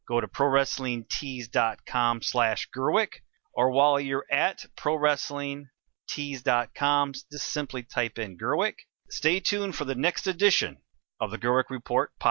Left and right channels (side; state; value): left; quieter; 30.7 dB